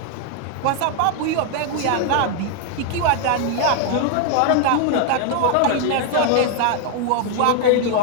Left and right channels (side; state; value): both; different; correlation 0.00